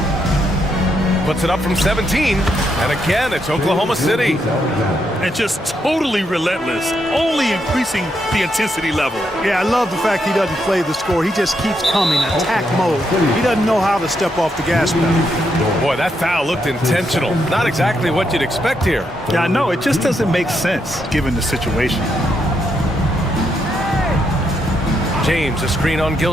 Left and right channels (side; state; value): both; normal; correlation 0.79